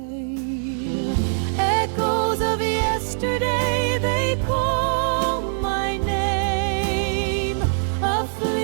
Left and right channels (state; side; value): silent; left; digital silence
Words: Echoes of yesterday, they call my name. A